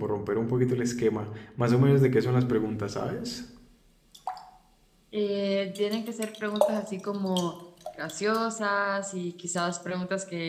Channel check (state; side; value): identical; both; correlation 1.00